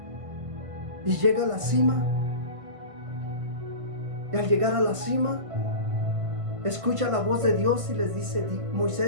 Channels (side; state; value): left; late; 1.5 ms